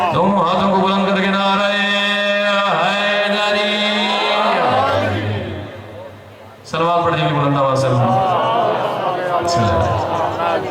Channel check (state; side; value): identical; both; correlation 1.00